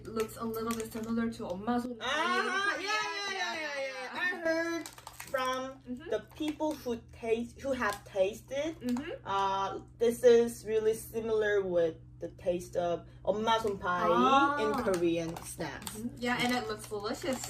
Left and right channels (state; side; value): identical; both; correlation 1.00